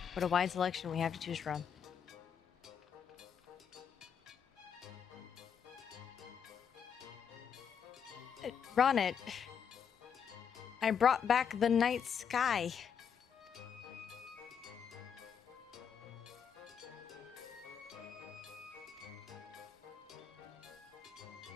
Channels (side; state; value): right; quieter; 7.4 dB